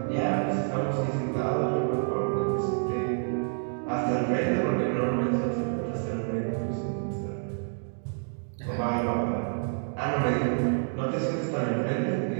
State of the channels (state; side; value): silent; left; digital silence